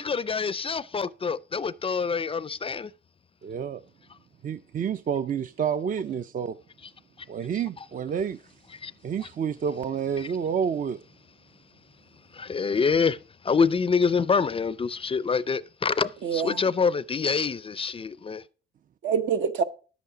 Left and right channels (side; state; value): both; normal; correlation 0.41